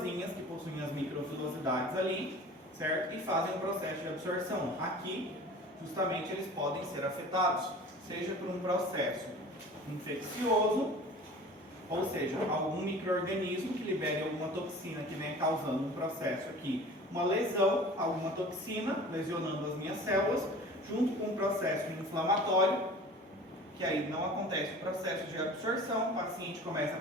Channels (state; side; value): normal; both; correlation 0.42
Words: que possuem as microfilosidades ali, certo? E fazem o processo de absorção. Aqui, justamente, eles podem ser afetados, seja por um processo infeccioso, ou seja, algum micro-organismo que libere alguma toxina que venha causando um processo aqui, uma lesão, alguma toxina lesionando as minhas células, junto com um processo inflamatório, que aí não acontece o processo de absorção, o paciente começa a